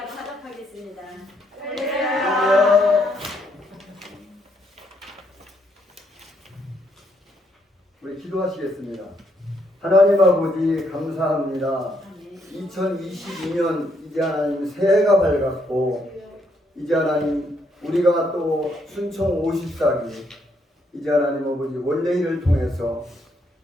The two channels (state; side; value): normal; both; correlation 0.74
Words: 화답하겠습니다. 우리 기도하시겠습니다. 하나님 아버지 감사합니다. 2022년 이제 하나님 새해가 밝았고 이제 하나님 우리가 또 순총 54기 이제 하나님 아버지 원래일을 통해서